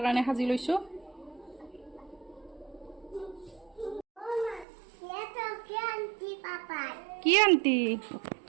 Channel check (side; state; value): left; drops out; at 4.7 s